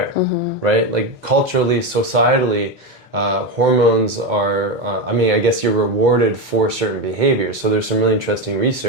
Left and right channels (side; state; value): both; normal; correlation 0.13